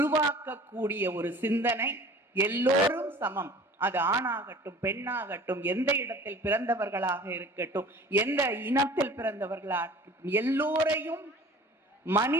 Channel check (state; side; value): normal; both; correlation 0.45